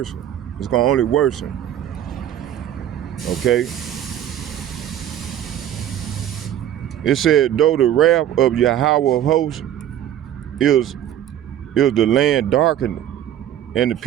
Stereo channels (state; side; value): quieter; left; 11.0 dB